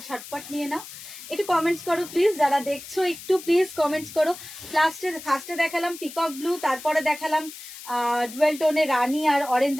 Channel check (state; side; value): noise; left; hiss, 14 dB below the sound